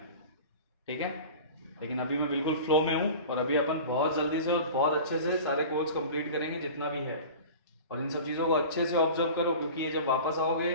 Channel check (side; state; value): both; inverted; correlation -0.37